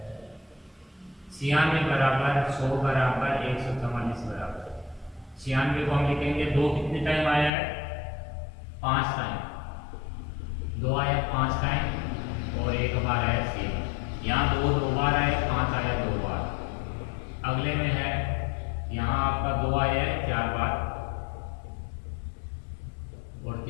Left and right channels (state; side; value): drops out; right; at 7.5 s